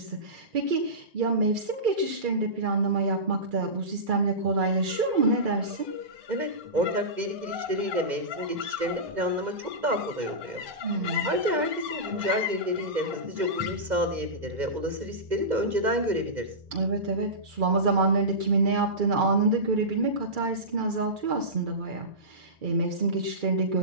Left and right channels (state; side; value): late; left; 2.1 ms